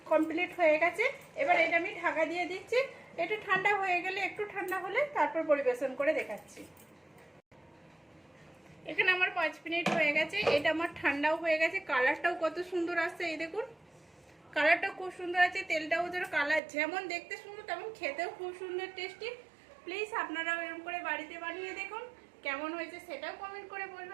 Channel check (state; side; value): drops out; left; at 16.6 s